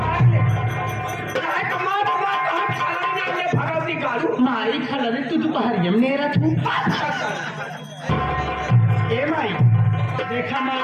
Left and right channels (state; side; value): identical; both; correlation 1.00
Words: ले, चाहे कमा कमा कहाँ खा ले भगवती गालू माई खला रे तू दोपहरिया में नेरा तू ए माई देखा माई